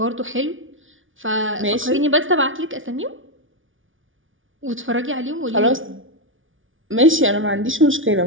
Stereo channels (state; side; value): late; left; 0.57 ms